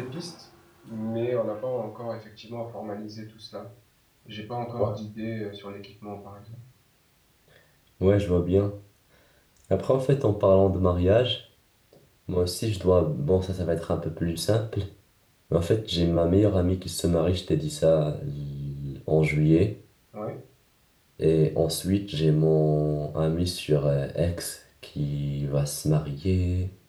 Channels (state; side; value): identical; both; correlation 1.00